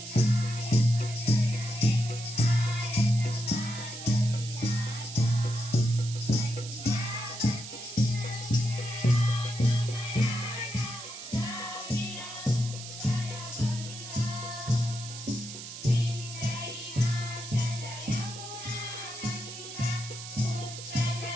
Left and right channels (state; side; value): noise; right; hiss, 11 dB below the sound